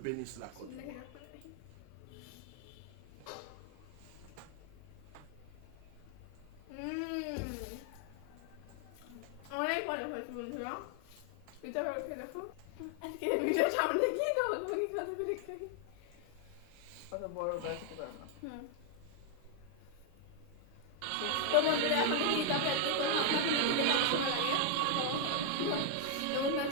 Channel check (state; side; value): different; both; correlation 0.00